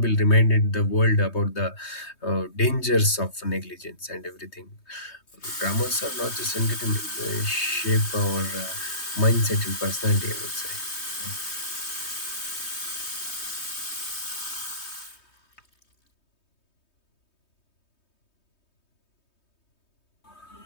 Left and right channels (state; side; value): late; right; 3.2 ms